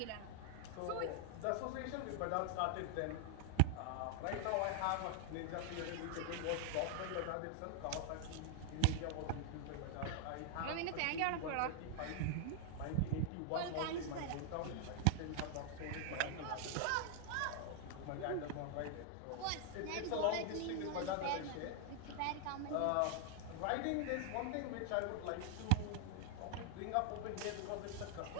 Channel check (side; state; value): both; different; correlation 0.00